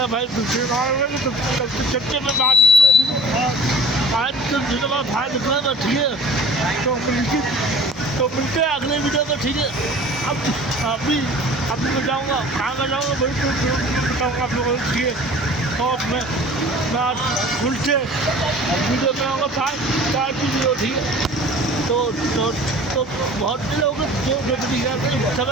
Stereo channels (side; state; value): both; normal; correlation 0.44